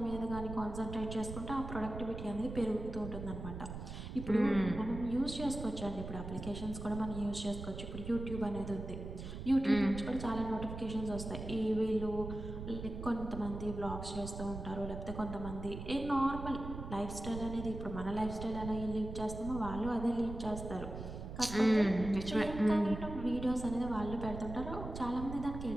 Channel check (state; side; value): noise; right; rumble, 8 dB below the sound